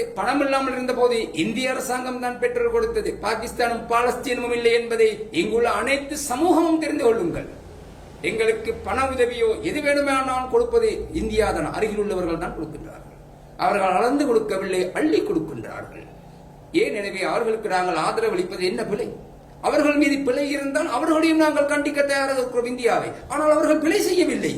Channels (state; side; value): identical; both; correlation 1.00